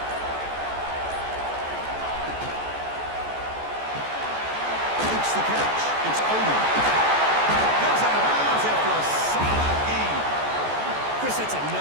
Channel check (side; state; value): left; late; 14 ms